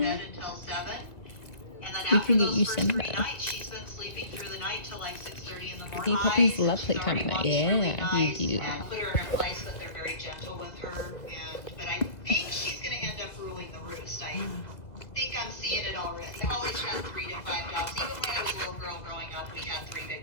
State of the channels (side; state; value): right; late; 2.0 ms